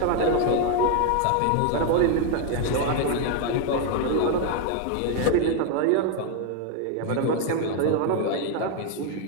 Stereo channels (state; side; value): different; both; correlation 0.00